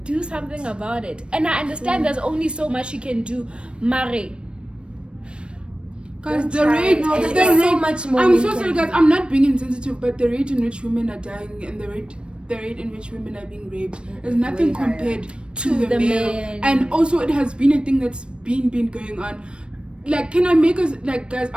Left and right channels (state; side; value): late; left; 0.057 ms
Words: do something about it? And I understand there's only so much you can do, mare. Guys, the rate, so much more. I'm so sorry, guys. I'm not being insensitive, but the rate in which women are dying and the rate in which women are being raped is nothing compared to the male. men. And also, it has been a thing that's been going on. Like, can I make us, like, guys,